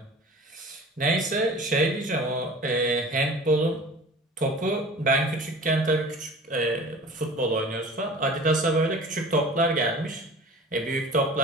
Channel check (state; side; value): normal; both; correlation 0.41